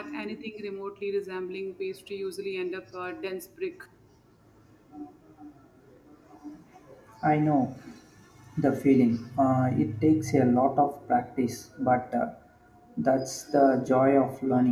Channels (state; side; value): identical; both; correlation 1.00